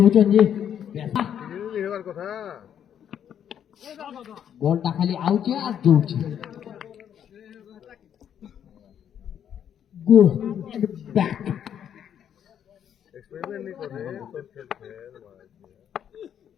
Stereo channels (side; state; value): right; quieter; 9.2 dB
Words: चन जी কথা বলটা খালি আউছে আর জুড়ছে গো ব্যাক এক্সপেরিমেন্ট नहीं कर रहे तो खेल खेल